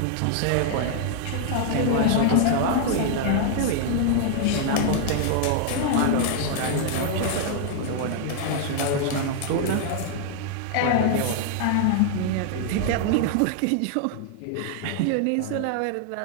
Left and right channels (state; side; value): different; both; correlation 0.00